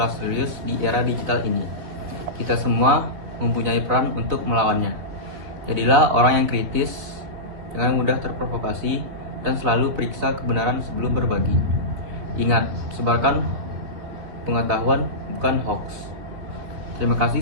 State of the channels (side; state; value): left; late; 3.7 ms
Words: serius di era digital ini. Kita semua mempunyai peran untuk melawannya. Jadilah orang yang kritis, jangan mudah terprovokasi, dan selalu periksa kebenaran sebelum berbagi. Ingat, sebarkan pengetahuan, bukan hoax. Terima kasih